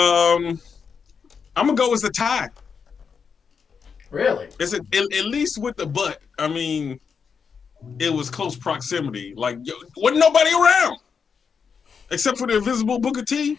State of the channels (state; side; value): quieter; right; 6.1 dB